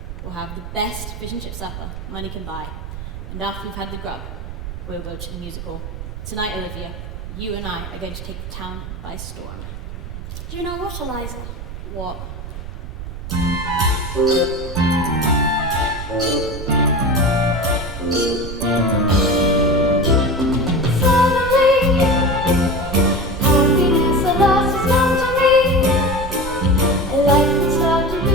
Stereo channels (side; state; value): right; noise; rumble, 9 dB below the sound